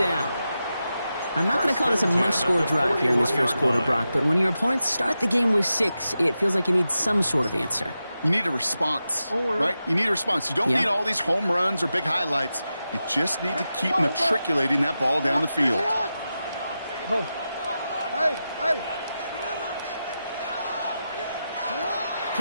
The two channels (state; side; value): inverted; both; correlation -0.90